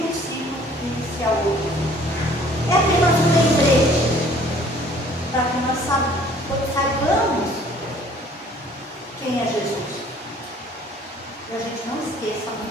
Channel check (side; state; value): both; normal; correlation 0.55